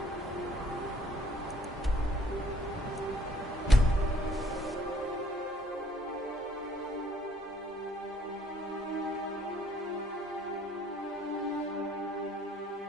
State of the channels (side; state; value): both; normal; correlation 0.62